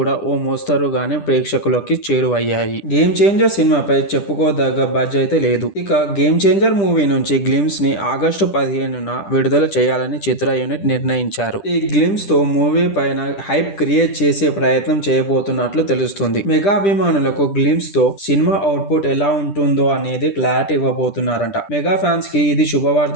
ఓ మోస్తరుగానే ప్రేక్షకులకి చేరువయ్యాయి. గేమ్ చేంజర్ సినిమాపై చెప్పుకోదగ్గ బజ్ అయితే లేదు. ఇక గేమ్ చేంజర్ మూవీ నుంచి గ్లిమ్స్ ని ఆగస్టు 15న విడుదల చేయాలని చిత్ర యూనిట్ నిర్ణయించారు. ఈ గ్లిమ్స్ తో మూవీ పైన హైప్ క్రియేట్ చేసే ప్రయత్నం చేయబోతున్నట్లు తెలుస్తుంది. మెగా అభిమానులకు గ్లిమ్స్ తో సినిమా అవుట్పుట్ ఎలా ఉంటుందో అనేది క్లారిటీ ఇవ్వబోతున్నారంట. మెగా ఫ్యాన్స్ కి ఇది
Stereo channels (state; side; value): late; right; 10 ms